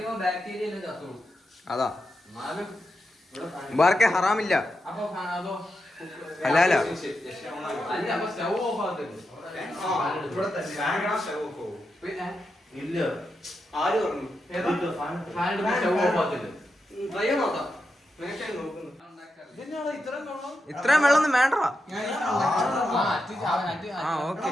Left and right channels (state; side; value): normal; both; correlation 0.87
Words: അതാ വേറെ ഹറാമില്ല. അല്ല ഇത്രയും വെള്ളമൊന്നും വേണ്ട. ഓക്കെ